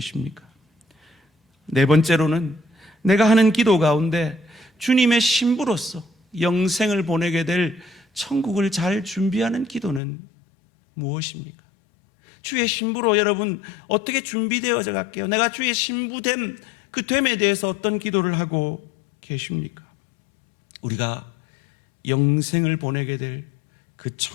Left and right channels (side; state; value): right; drops out; at 10.0 s